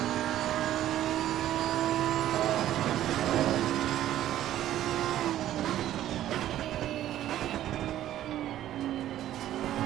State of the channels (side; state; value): left; quieter; 12.7 dB